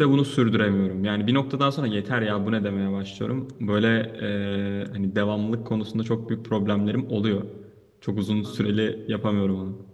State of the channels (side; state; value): both; identical; correlation 1.00